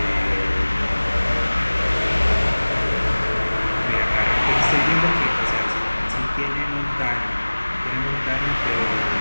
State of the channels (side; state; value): both; inverted; correlation -1.00